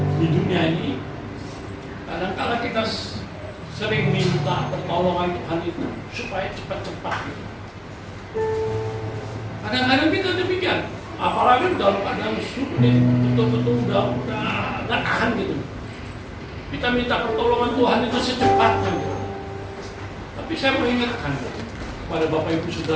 di dunia ini, kadang-kadang kita sering minta pertolongan Tuhan itu supaya cepat-cepat gitu. Kadang-kadang kita demikian, apalagi dalam keadaan sulit, betul-betul udah nggak tahan gitu. Kita minta pertolongan Tuhan itu secepatnya gitu. Tapi saya mengingatkan kepada Bapak Ibu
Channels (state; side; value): identical; both; correlation 1.00